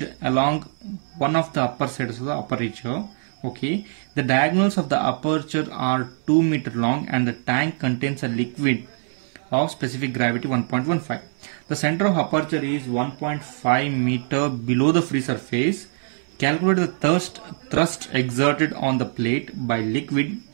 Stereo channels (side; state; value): left; silent; digital silence